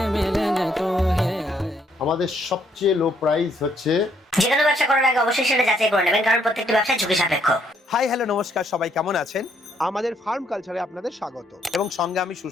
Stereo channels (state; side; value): normal; both; correlation 0.71